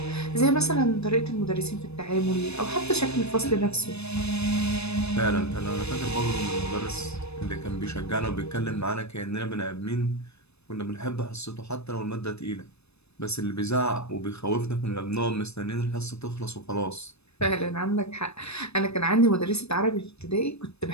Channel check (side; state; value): right; late; 0.80 ms